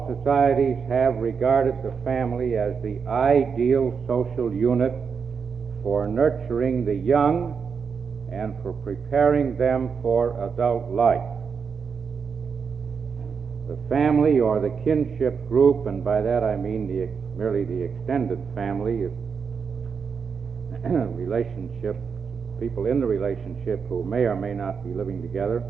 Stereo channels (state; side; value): quieter; left; 6.0 dB